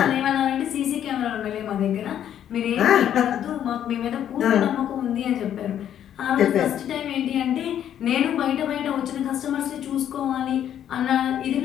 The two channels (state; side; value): quieter; right; 10.2 dB